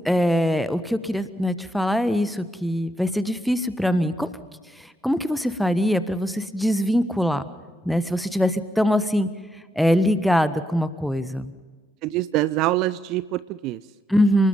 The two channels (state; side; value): normal; both; correlation 0.80